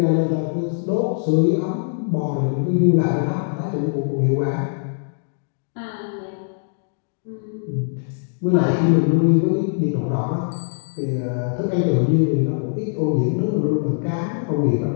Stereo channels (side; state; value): right; silent; digital silence